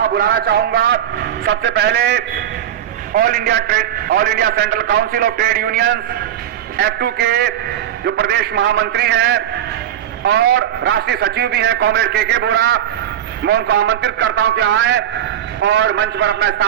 बुलाना चाहूंगा। सबसे पहले all India central council of trade unions F2 के जो प्रदेश महामंत्री हैं और राष्ट्रीय सचिव भी हैं, कॉमरेड के बोरा, मैं उनको आमंत्रित करता हूं कि आए और मंच पर अपना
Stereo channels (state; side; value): quieter; left; 10.6 dB